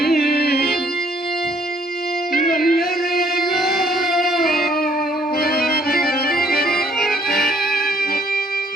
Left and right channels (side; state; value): both; normal; correlation 0.63